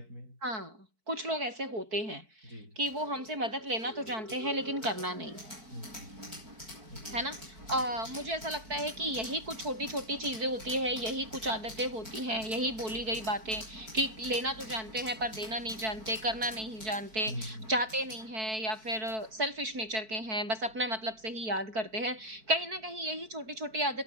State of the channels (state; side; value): late; left; 4.6 ms